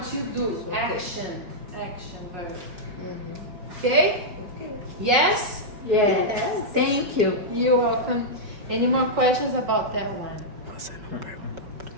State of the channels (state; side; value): late; left; 5.5 ms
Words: you do. Ok. Action. Action verb. Uhum. Ok? Yes? Yes. Thank you. You're welcome. Any more questions about that one? Você não perguntou